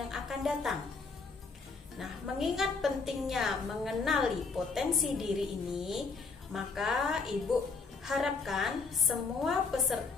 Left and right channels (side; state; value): right; quieter; 4.5 dB